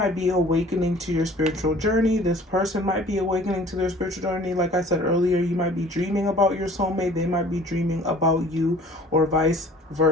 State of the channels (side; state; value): both; normal; correlation 0.49